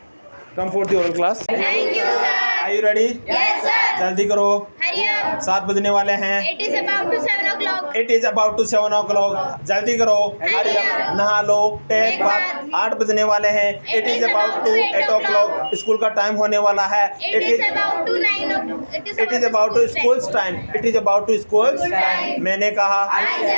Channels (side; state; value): both; inverted; correlation -1.00